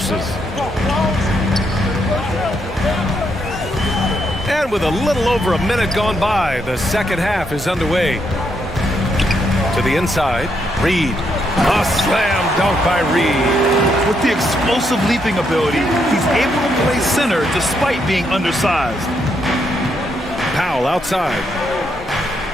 And with a little over a minute gone by, the second half is underway. To the inside, Reed. A slam dunk by Reed. With the explosive leaping ability, he's able to play center despite being undersized. Powell outside.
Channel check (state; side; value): normal; both; correlation 0.77